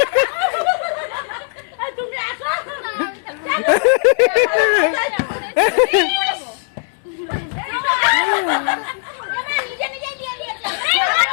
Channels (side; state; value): right; silent; 66 dB below the other